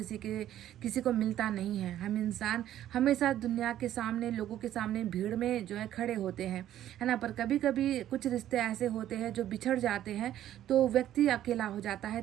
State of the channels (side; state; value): left; quieter; 12.1 dB